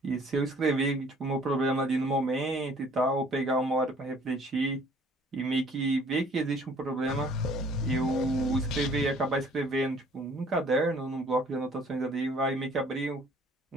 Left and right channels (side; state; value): both; normal; correlation 0.56